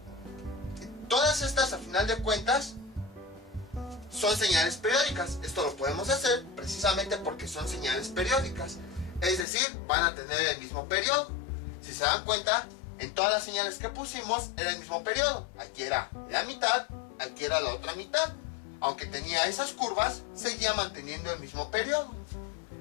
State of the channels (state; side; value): drops out; right; at 9.5 s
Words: todas estas a final de cuentas son señales periódicas. Esto lo podemos hacer precisamente porque son señales periódicas, es decir, van a tener el mismo periodo. Si se dan cuenta, en todas las señales que pusimos era el mismo periodo. Aquí era la mitad, aquí era la otra mitad. Aunque tenía esas curvas, seguía manteniendo el mismo periodo.